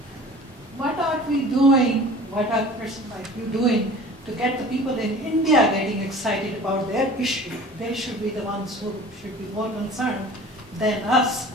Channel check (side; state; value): both; normal; correlation 0.43